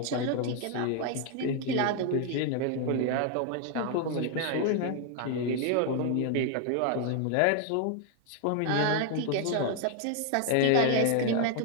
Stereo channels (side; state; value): both; different; correlation 0.00